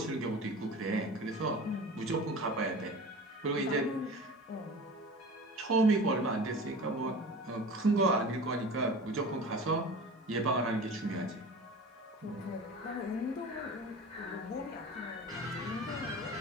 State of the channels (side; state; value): both; normal; correlation 0.36